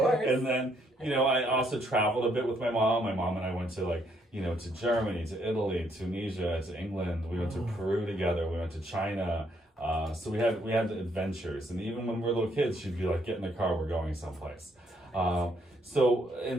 And then, you know, I also traveled a bit with my mom. My mom and I went to to Germany, to Italy, Tunisia, to England. We went to Peru together. We went to China. So we had adventures, and even when we were little kids, she'd be like, "Get in the car, we're going someplace."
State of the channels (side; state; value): both; normal; correlation 0.71